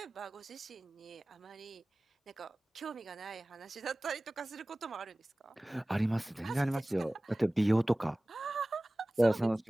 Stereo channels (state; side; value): normal; both; correlation 0.98